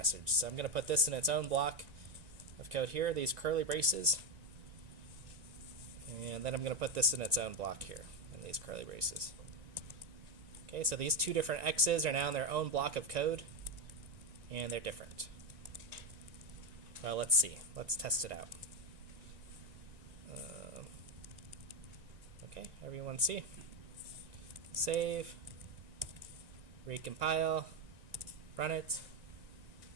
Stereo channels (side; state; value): left; late; 1.9 ms